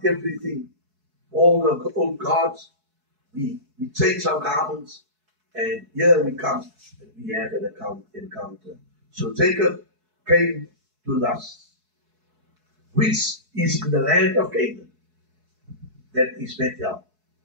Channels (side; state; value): left; late; 4.7 ms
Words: everything, all the old gods. We change our garments. And here we come and we have an encounter. So Jacob came to Luz, which is in the land of Canaan. That is Bethel.